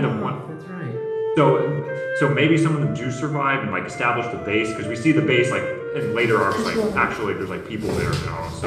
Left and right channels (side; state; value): both; identical; correlation 1.00